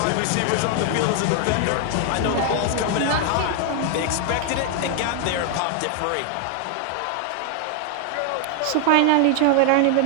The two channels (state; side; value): different; both; correlation 0.00